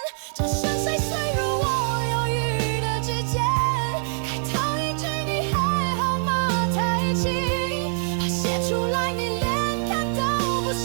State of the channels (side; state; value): left; silent; 62 dB below the other